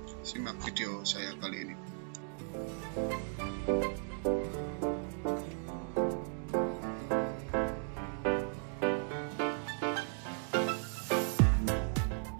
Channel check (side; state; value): left; silent; 54 dB below the other